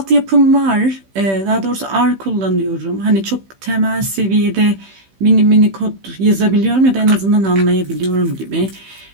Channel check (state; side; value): late; left; 15 ms